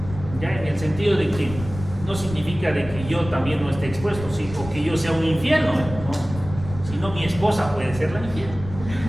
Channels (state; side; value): noise; left; rumble, 12 dB below the sound